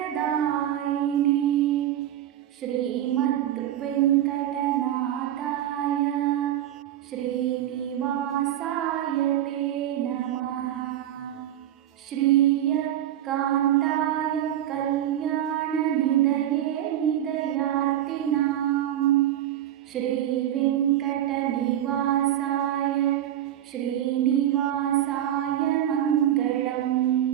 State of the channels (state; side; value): quieter; left; 11.8 dB